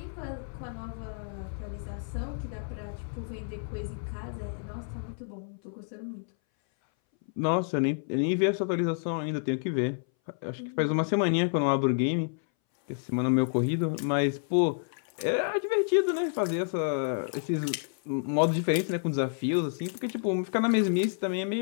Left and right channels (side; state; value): right; silent; 58 dB below the other